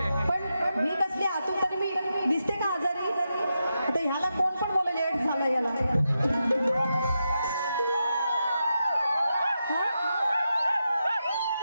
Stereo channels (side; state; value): both; inverted; correlation -0.87